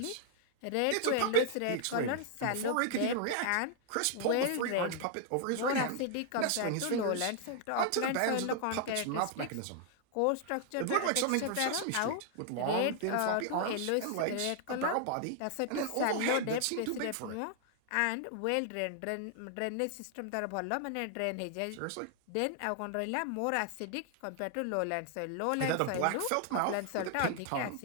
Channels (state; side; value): different; both; correlation 0.00